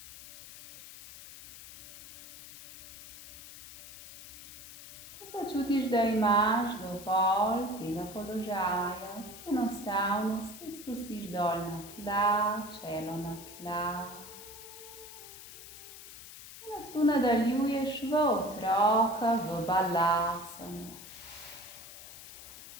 Začutiš, da imaš dovolj tega položaja, se enostavno spet spustiš dol na tla, čelo na tla. In od tu nadaljuješ v otroka, v balasano.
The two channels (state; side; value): noise; left; hiss, 15 dB below the sound